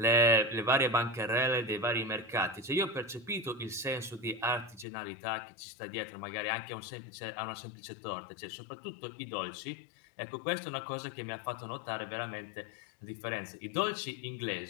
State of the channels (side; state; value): right; drops out; at 4.9 s